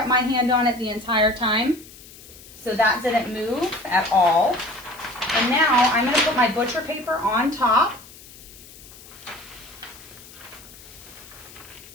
my hand on it the entire time, so that didn't move at all. And now I'm going to put my butcher paper on top,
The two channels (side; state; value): left; noise; hiss, 19 dB below the sound